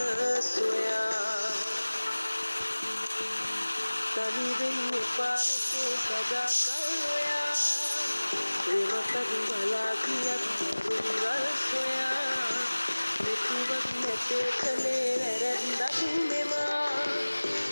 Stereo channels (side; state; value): both; inverted; correlation -1.00